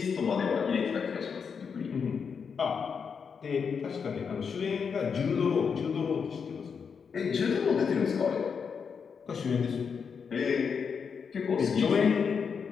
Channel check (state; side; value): quieter; right; 6.2 dB